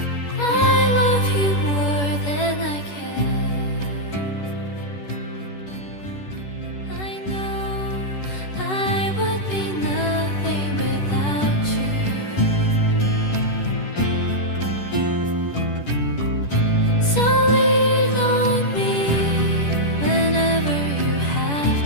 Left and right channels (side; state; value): right; late; 10 ms